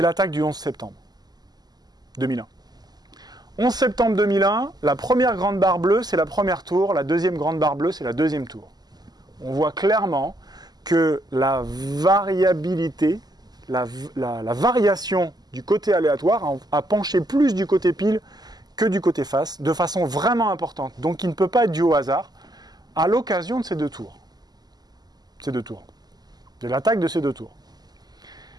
l'attaque du 11 septembre 2001. 11 septembre 2001, la première grande barre bleue, c'est la première tour, la deuxième grande barre bleue, c'est la deuxième tour. On voit clairement que la variabilité, la variation du côté aléatoire a penché plus du côté pile que du côté face, de façon vraiment importante. Donc il ne peut pas être dû au hasard, à l'occasion de ces deux tours. De l'attaque de ces deux tours.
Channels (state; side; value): late; left; 0.20 ms